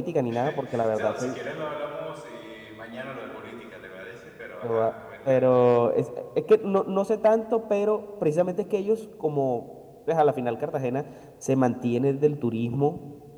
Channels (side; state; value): both; identical; correlation 1.00